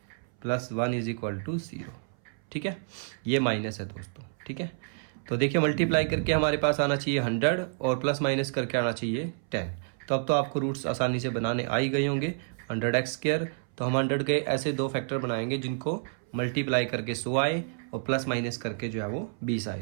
plus 1 is equal to 0। ठीक है, ये माइनस है दोस्तों। ठीक है, तो देखिए मल्टीप्लाई करके हमारे पास आना चाहिए 100 और प्लस माइनस करके आना चाहिए 10। तो अब तो आपको रूट्स आसानी से बनाने आ ही गए होंगे। 100x², तो हम 100 के ऐसे दो फैक्टर बनाएंगे जिनको मल्टीप्लाई करके 100 आए और प्लस माइनस करके जो है वो 20 आए।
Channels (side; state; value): left; silent; 59 dB below the other